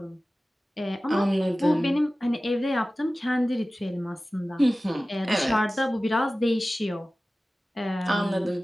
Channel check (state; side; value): normal; both; correlation 0.96